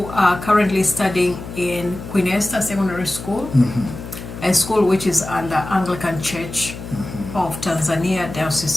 are currently studying in Queen Esther Secondary School, a school which is under Anglican Church of Tanzania,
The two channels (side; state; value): left; noise; hum, 11 dB below the sound